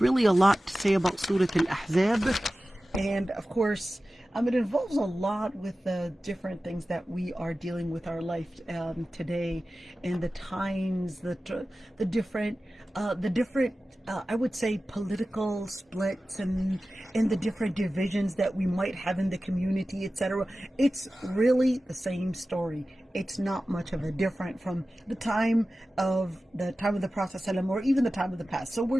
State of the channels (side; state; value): both; normal; correlation 0.95